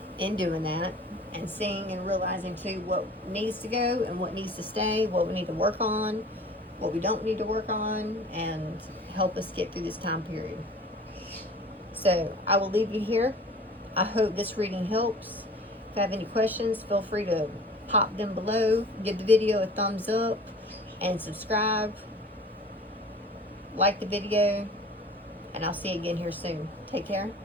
in doing that, and seeing and realizing too what needs to go and what needs to stay, what we need to work on, what we don't need to work on, and help us get through this time period. So I will leave you here. I hope this reading helps. If you have any questions, feel free to pop them below. Give the video a thumbs up and subscribe. Like the video. And I'll see you again here soon. Take care.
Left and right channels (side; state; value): both; normal; correlation 0.44